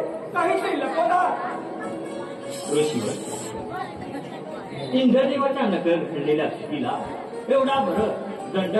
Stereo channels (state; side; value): identical; both; correlation 1.00